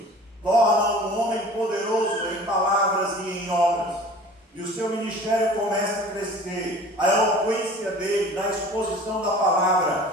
torna um homem poderoso em palavras e em obras. E o seu ministério começa a crescer. A eloquência dele na exposição da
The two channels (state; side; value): normal; both; correlation 0.44